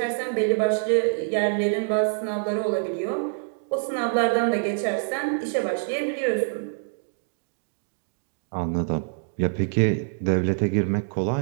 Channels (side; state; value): left; silent; digital silence